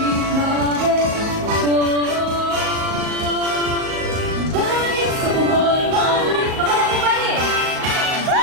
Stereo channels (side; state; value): left; late; 38 ms